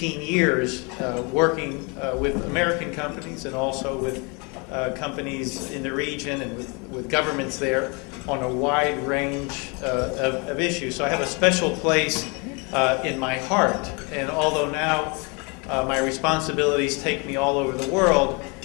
years working with American companies and also with companies in the region and with governments there on a wide range of issues. So I have a special place in my heart. And although now my responsibilities take me all over the world,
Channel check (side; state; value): right; quieter; 30.9 dB